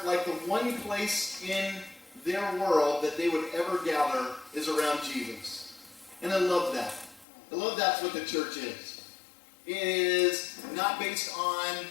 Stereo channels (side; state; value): right; drops out; at 7.2 s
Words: like the one place in their world that they would ever gather is around Jesus. And I love that. I love that's what the church is. It is not based on